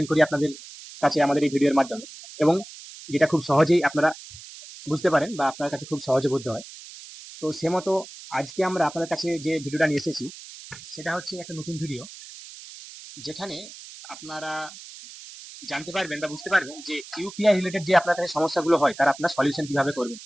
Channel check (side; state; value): right; noise; hiss, 16 dB below the sound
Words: করি আপনাদের কাছে আমাদের এই ভিডিওর মাধ্যমে, এবং যেটা খুব সহজেই আপনারা বুঝতে পারেন বা আপনার কাছে খুব সহজে বোধ হয়। তো সে মতো আজকে আমরা আপনাদের কাছে যে ভিডিওটা নিয়ে এসেছি সেটা হচ্ছে একটা নতুন ভিডিও, যেখানে আপনারা জানতে পারবেন বা বুঝতে পারবেন যে ইউপিআই রিলেটেড যে আপনার কাছে সমস্যাগুলো হয় তার আপনার সলিউশন কিভাবে করবেন।